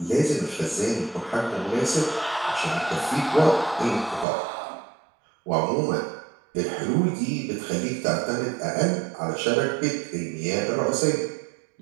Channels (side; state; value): left; drops out; at 4.2 s